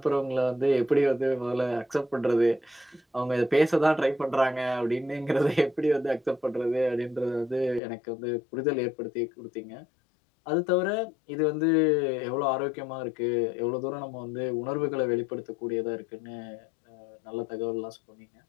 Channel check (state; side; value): drops out; right; at 7.8 s